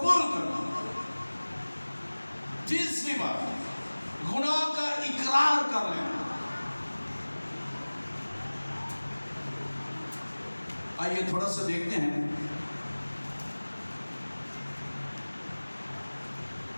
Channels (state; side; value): inverted; both; correlation -1.00